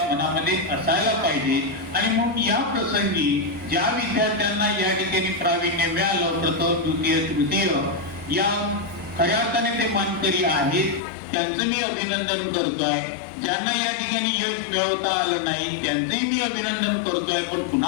मनामध्ये असायला पाहिजे. आणि मग या प्रसंगी ज्या विद्यार्थ्यांना या ठिकाणी प्रावीण्य मिळालं, प्रथम द्वितीय तृतीय या खऱ्या अर्थाने ते मानकरी आहेत, त्यांचं मी अभिनंदन करतोय. ज्यांना या ठिकाणी यश मिळवता आलं नाही त्यांचंही मी अभिनंदन करतोय. पण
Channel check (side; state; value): right; drops out; at 11.0 s